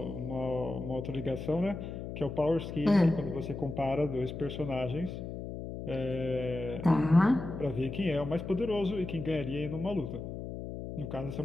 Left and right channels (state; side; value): noise; left; hum, 7 dB below the sound